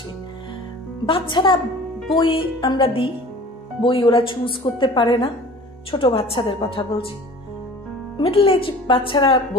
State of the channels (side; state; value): both; normal; correlation 0.43